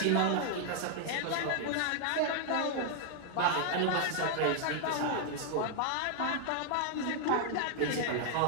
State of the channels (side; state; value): both; different; correlation 0.00